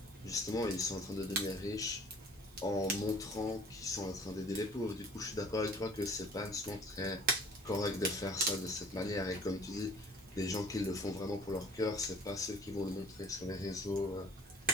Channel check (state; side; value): normal; both; correlation 0.50